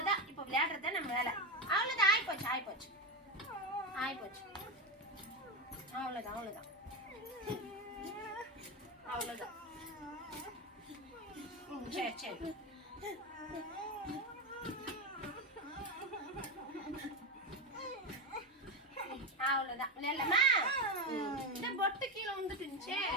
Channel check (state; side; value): normal; both; correlation 0.15